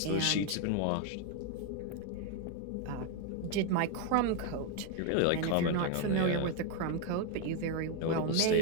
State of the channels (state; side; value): different; both; correlation 0.01